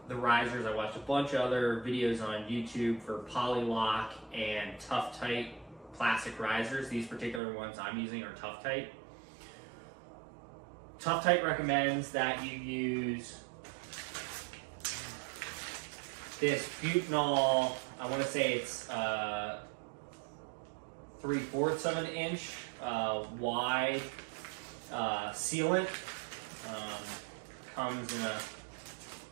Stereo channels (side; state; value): left; drops out; at 7.4 s